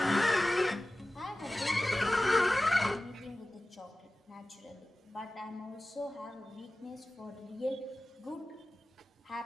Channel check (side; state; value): both; normal; correlation 0.96